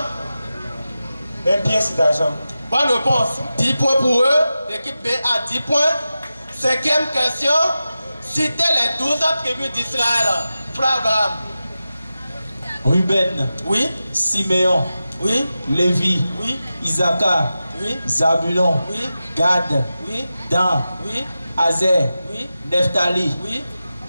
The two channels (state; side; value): inverted; both; correlation -0.93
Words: 1 pièce d'argent. Bonne réponse. 10 points pour eux. L'équipe B a 10 points. 5e question. Citez les 12 tribus d'Israël. Frère Abraham. Ruben. Oui. Siméon. Oui. Lévi. Oui. Isaacar. Oui. Zabulon. Oui. Gad. Oui. Dan. Oui. Azer. Oui. Nephtali. Oui.